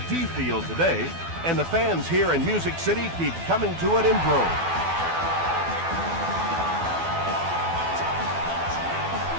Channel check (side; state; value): left; late; 12 ms